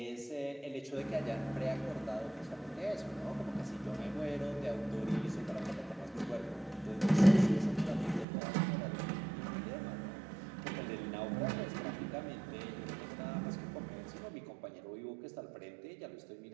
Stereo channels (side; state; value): left; drops out; at 8.2 s